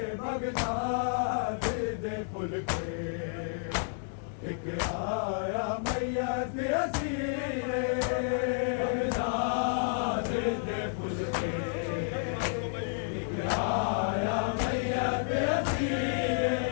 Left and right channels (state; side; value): silent; right; digital silence